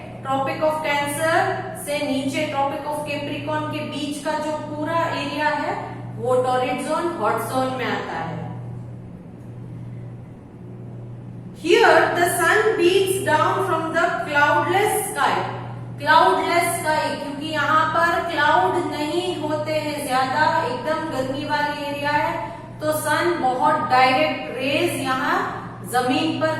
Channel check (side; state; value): both; identical; correlation 1.00